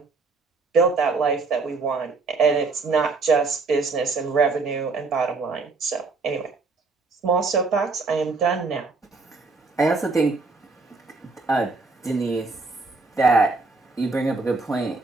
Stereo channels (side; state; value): left; quieter; 3.9 dB